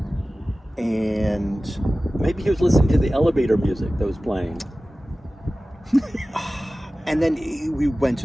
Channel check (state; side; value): normal; both; correlation 0.96